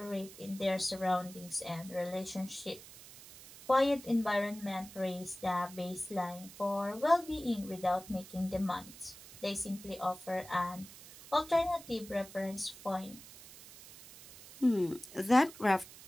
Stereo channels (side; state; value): right; noise; hiss, 17 dB below the sound